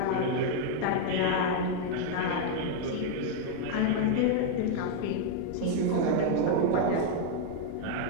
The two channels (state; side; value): different; both; correlation 0.00